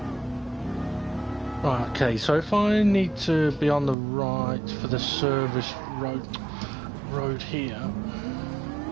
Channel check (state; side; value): drops out; left; at 4.0 s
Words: Right, okay, so if I need to be on the right for the service road here.